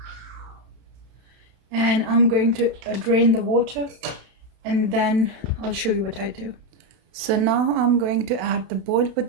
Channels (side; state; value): left; late; 31 ms